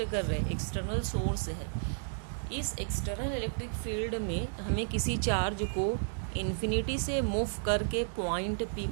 कर रहे हैं, एक्सटर्नल सोर्स है। इस एक्सटर्नल इलेक्ट्रिक फील्ड में हमें किसी चार्ज को इन्फिनिटी से मूव करके पॉइंट पी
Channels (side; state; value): left; silent; digital silence